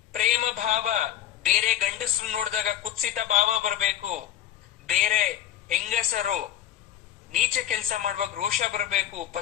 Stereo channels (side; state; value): right; quieter; 11.6 dB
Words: ಪ್ರೇಮ ಭಾವ. ಬೇರೆ ಗಂಡಸರು ನೋಡಿದಾಗ ಕುತ್ಸಿತ ಭಾವ ಬರಬೇಕು. ಬೇರೆ ಹೆಂಗಸರು ನೀಚ ಕೆಲಸ ಮಾಡುವಾಗ ರೋಷ ಬರಬೇಕು.